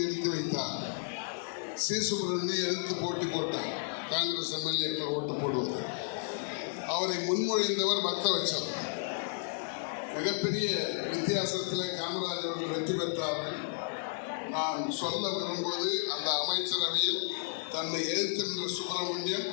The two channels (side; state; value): right; silent; digital silence